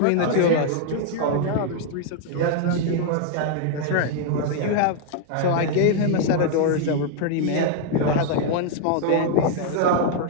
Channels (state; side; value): different; both; correlation 0.00